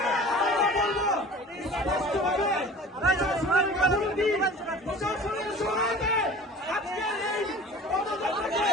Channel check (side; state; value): both; normal; correlation 0.41